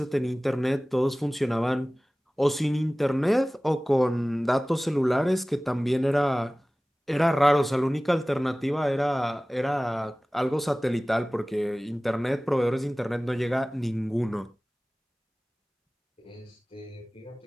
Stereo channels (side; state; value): both; normal; correlation 0.98